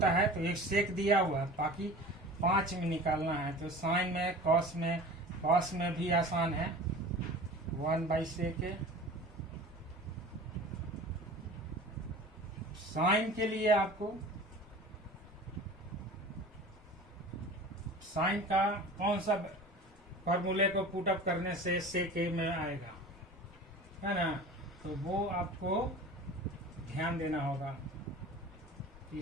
है तो एक सेक दिया हुआ है, बाकी 5 में निकालना है। तो साइन में कॉस में भी आसान है, 1/सेक ए। साइन के लिए आपको साइन का कौन सा फॉर्मूले को पुट अप करने से सेक ए में आएगा, है ना। तो वो आपको ध्यान देना होगा कि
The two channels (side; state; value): both; normal; correlation 0.39